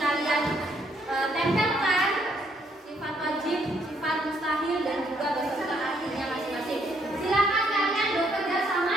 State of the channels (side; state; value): both; normal; correlation 0.70